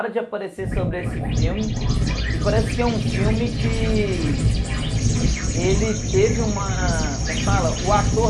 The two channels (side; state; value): both; identical; correlation 1.00